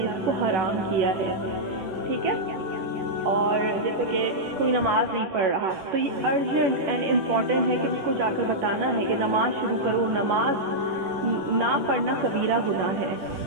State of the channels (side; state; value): left; late; 10 ms